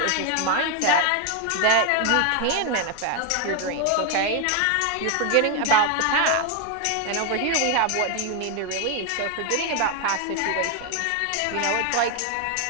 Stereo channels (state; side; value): different; both; correlation 0.01